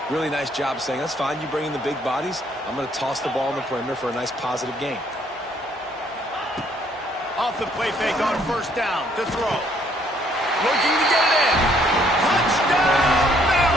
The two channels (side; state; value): both; normal; correlation 0.66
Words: really nice job saying, that's fine. You bring in the big bodies. I'm going to toss the ball on the perimeter for a nice positive gain. Off the play fake on 1st down to throw. Looking to get it in. Touchdown,